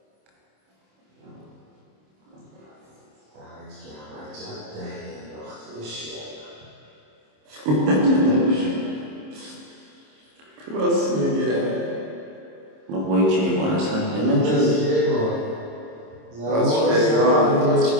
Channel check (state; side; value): late; left; 26 ms